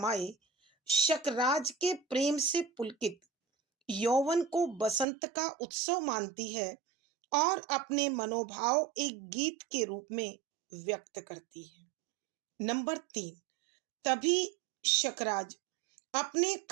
शकराज के प्रेम से पुलकित यौवन को बसंत का उत्सव मानती है और अपने मनोभाव एक गीत के रूप में व्यक्त करती है। नंबर 3, तभी शकराज अपने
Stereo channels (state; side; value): drops out; left; at 5.1 s